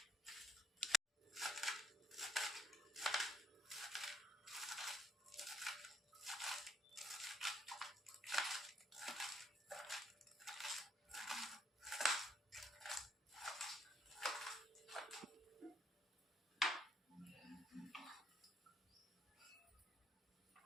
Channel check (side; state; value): both; normal; correlation 0.69